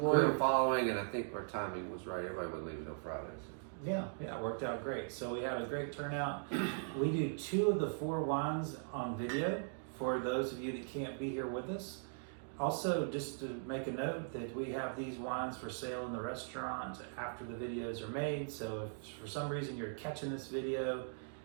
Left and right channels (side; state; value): left; silent; digital silence